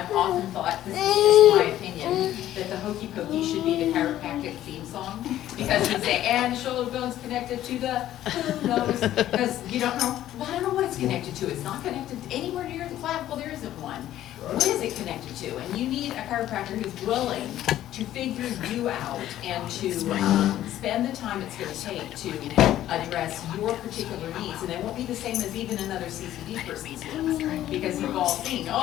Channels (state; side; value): quieter; right; 12.9 dB